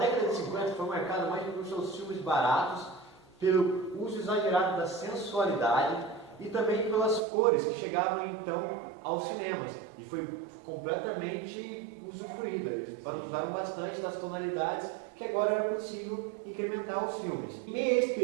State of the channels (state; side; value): drops out; left; at 7.2 s